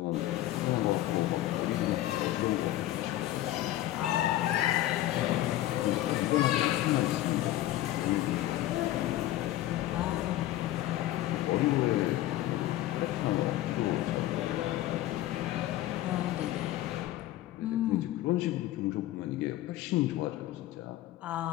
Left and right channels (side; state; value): right; quieter; 14.8 dB